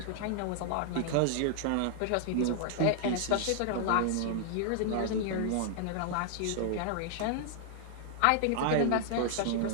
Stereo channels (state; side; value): different; both; correlation -0.01